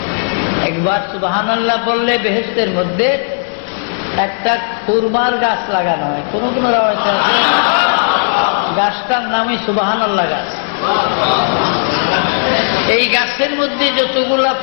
একবার সুবহানাল্লাহ বললে বেহেশতের মধ্যে একটা খুরমার গাছ লাগানো হয়। কোন কোন রাওয়ায়াতে আছে গাছটার নামই সুবহানাল্লাহ গাছ। এই গাছের মধ্যে যতগুলা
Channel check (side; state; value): right; silent; digital silence